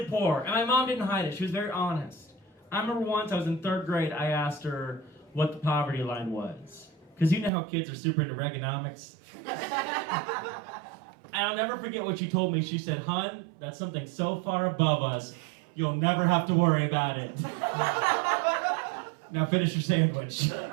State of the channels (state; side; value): drops out; left; at 7.5 s